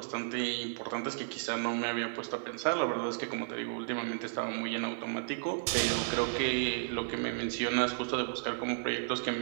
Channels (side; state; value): left; silent; digital silence